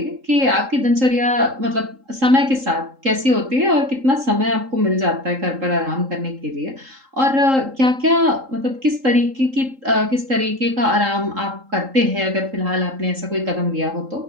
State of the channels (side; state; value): left; late; 3.8 ms